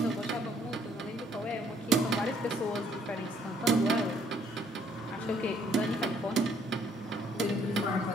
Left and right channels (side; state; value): both; normal; correlation 0.65